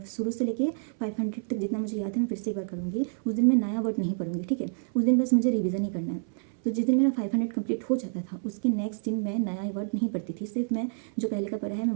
शुरू से लेके 500 तक जितना मुझे याद है मैं फिर से एक बार करूँगी। उस दिन मैं नया वर्ड नहीं पढ़ूंगी। ठीक है, उस दिन बस मुझे रिवीजन ही करना है। तो जिस दिन मेरा 500 कंप्लीट हो जाता था उसके नेक्स्ट दिन मैं नया वर्ड नहीं पढ़ती थी, सिर्फ मैं जो पहले का पढ़ा है मैं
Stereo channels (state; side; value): silent; left; 59 dB below the other